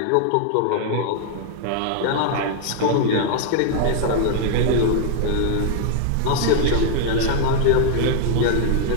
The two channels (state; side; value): different; both; correlation -0.01